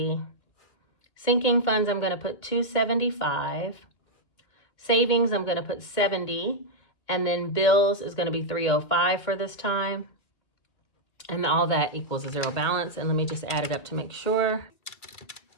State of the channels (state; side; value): late; right; 2.5 ms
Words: Sinking funds, I'm going to put 275. Savings, I'm going to put 70. And then bills is going to be 305 for this time. And all that equals a 0 balance. And let me just add it up to make sure.